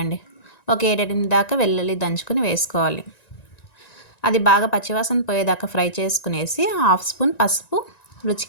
ఒక 7-8 దాకా వెల్లుల్లి దంచుకుని వేసుకోవాలి. అది బాగా పచ్చివాసన పోయేదాకా ఫ్రై చేసుకునేసి 1/2 స్పూన్ పసుపు,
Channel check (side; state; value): right; late; 1.9 ms